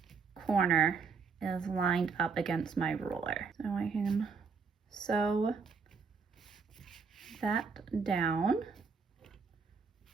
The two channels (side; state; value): left; quieter; 5.3 dB